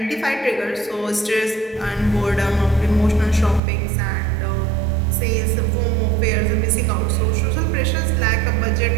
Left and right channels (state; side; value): drops out; left; at 3.6 s